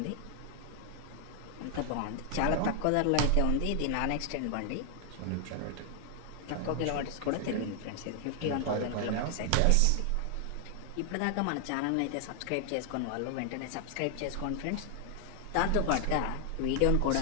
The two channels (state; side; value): different; both; correlation 0.00